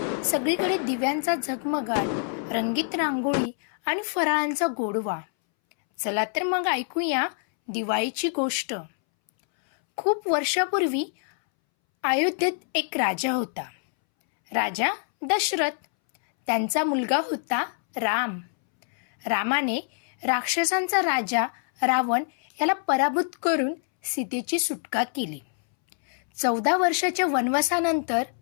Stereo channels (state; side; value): silent; right; 61 dB below the other